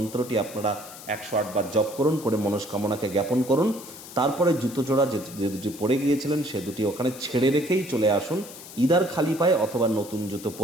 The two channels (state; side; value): noise; left; hiss, 15 dB below the sound